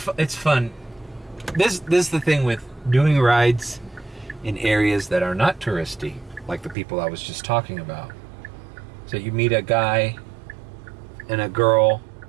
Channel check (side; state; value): left; drops out; at 6.8 s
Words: fun. This is the thing with doing rides in areas that are not touristy, like the people I was just talking about. So you meet a guy and a girl